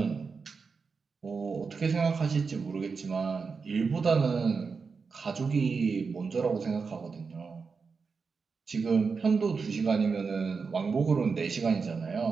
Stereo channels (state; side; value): quieter; left; 5.0 dB